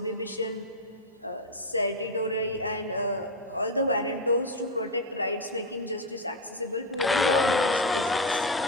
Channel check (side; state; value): both; normal; correlation 0.08